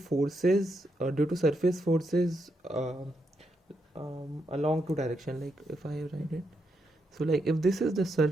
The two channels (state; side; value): normal; both; correlation 0.82